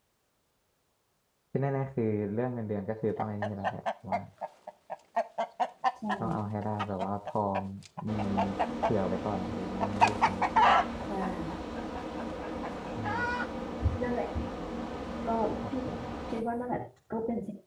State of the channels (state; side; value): identical; both; correlation 1.00